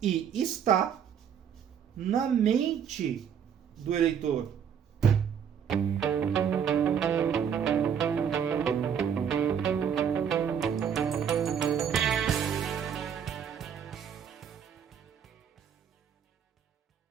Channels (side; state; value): left; quieter; 8.0 dB